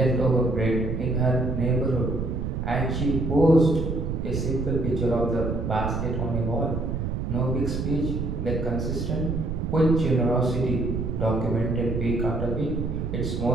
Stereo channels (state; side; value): noise; right; rumble, 3 dB below the sound